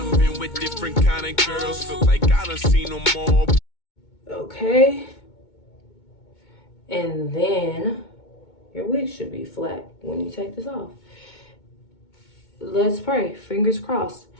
been with different kind of girls. Feel like I done seen them all. Okay. And then your wig should be flat when you take this off. Let's pray. Fingers crossed.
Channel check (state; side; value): late; right; 2.2 ms